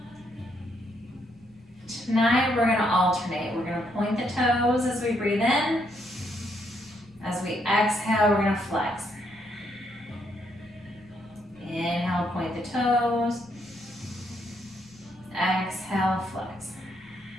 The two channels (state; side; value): noise; left; rumble, 28 dB below the sound